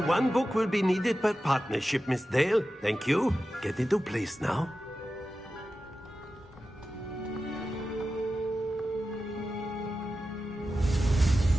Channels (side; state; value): both; normal; correlation 0.92